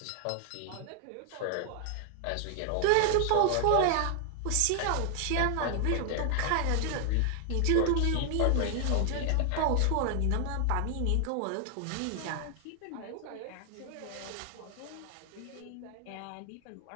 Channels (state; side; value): different; both; correlation 0.00